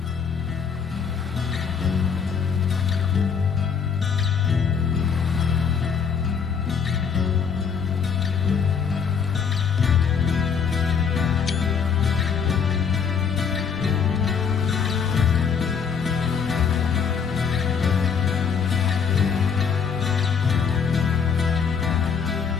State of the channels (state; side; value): quieter; right; 6.5 dB